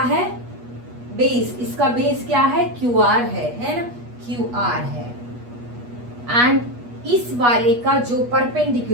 है, बेस, इसका बेस क्या है, QR है ना, QR है, एंड इस वाले का जो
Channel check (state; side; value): late; left; 8.3 ms